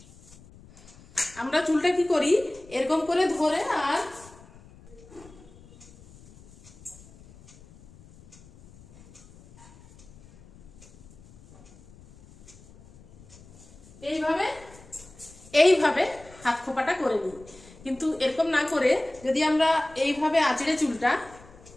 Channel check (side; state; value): left; noise; rumble, 23 dB below the sound